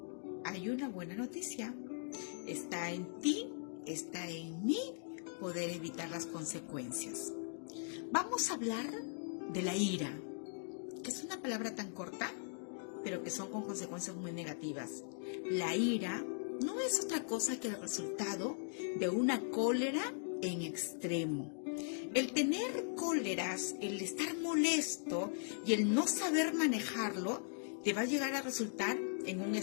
hay una buena noticia. Está en ti, está en mí poder evitar las consecuencias. Vamos a hablar de la ira, que es una palabra tan corta, pero que son con consecuencias muy negativas. La ira no es otra cosa que el resultado de una cólera en extremo. El tener cóleras, el estar molesto y el no saber manejarlo, te va a llegar a resultar en un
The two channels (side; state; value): right; silent; digital silence